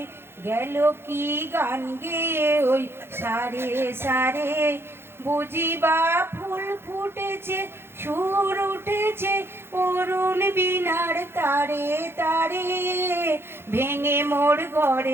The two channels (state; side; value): late; left; 0.11 ms